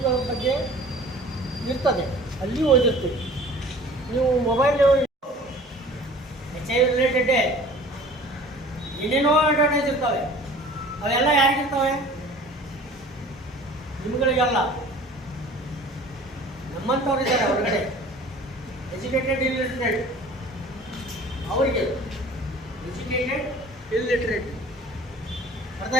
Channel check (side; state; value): both; normal; correlation 0.46